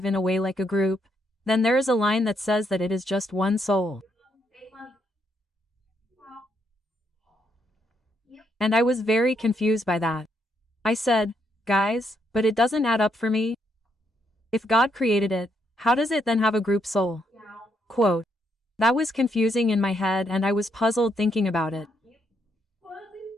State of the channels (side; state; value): both; normal; correlation 0.76